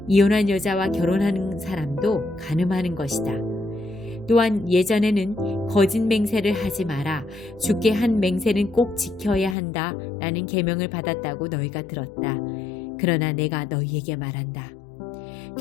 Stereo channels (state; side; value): drops out; right; at 9.6 s